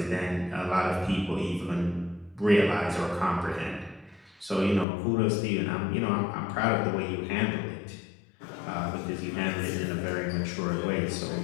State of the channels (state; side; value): drops out; right; at 4.9 s